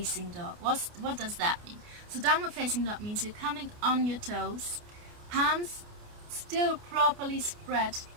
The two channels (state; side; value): late; left; 29 ms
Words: dog. What does that mean? So downward facing dog means you're coming on your toes, palms still properly spread.